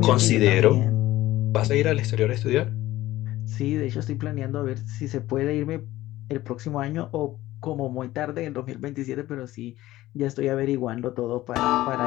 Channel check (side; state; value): right; quieter; 16.2 dB